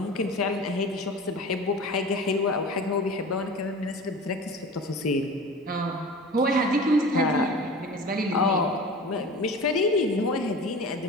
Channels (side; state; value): both; normal; correlation 0.36